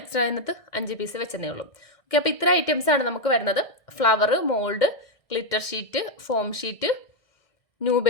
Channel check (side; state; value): right; late; 1.6 ms